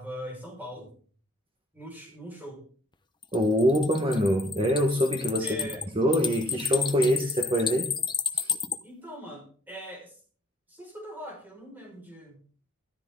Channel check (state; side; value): normal; both; correlation 0.59